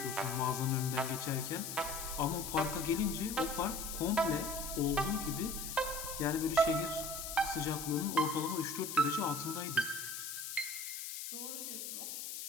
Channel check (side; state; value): left; noise; hiss, 6 dB below the sound